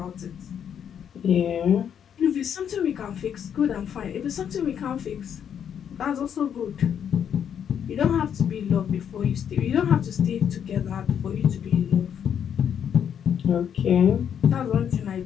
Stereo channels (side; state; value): right; quieter; 8.5 dB